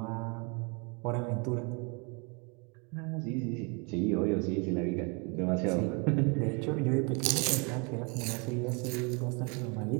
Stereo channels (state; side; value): quieter; left; 32.5 dB